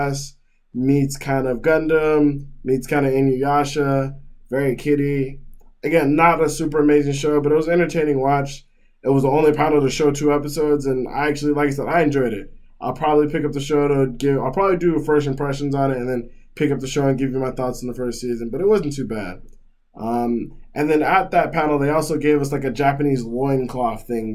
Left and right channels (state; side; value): identical; both; correlation 1.00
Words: meets kind of Gundam, meets kind of Inuyasha, very kiddie. Again, not a super amazing show, but it was an entertaining watch. It was the only panel to show 2 episodes, and I actually, like I said, I enjoyed it. I'll probably pick up the show I'll probably do first impressions on it and then pick up the show and give you my thoughts on the first season, but it wasn't too bad. And then at that panel, they also gave us a Japanese loincloth